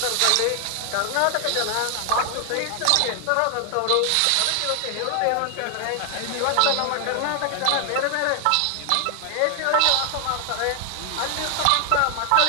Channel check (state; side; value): different; both; correlation 0.00